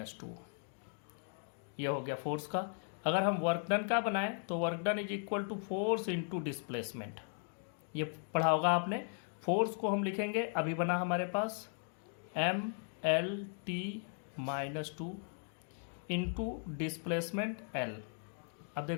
two. ये हो गया फोर्स का। अगर हम वर्क डन का बनाएं तो work done is equal to force into displacement. ये पढ़ा होगा आपने। फोर्स को हम लिखेंगे, अभी बना हमारे पास M L T minus two into displacement L. अब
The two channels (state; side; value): silent; right; 53 dB below the other